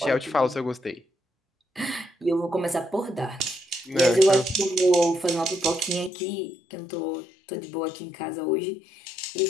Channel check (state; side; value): drops out; right; at 6.1 s